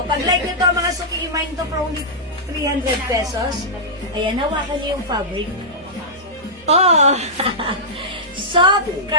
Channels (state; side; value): normal; both; correlation -0.13